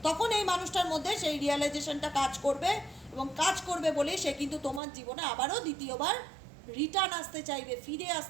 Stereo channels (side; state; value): left; drops out; at 4.8 s